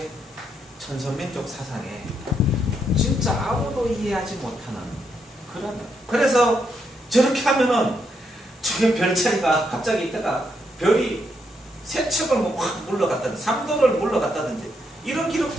천선민족 사상에 진짜 아무도 이해하지 못하는 그런. 그래서 저렇게 하면은 저게 별자리가 갑자기 있다가 별이 세 척을 확 물러갔다든지 삼도를 물러갔다든지 이런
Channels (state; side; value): normal; both; correlation 0.78